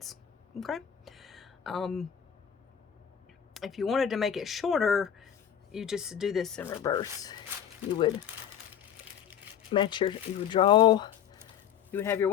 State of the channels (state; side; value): quieter; right; 9.0 dB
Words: Okay. If you wanted to make it shorter, you just do this in reverse. You would match your, you would have your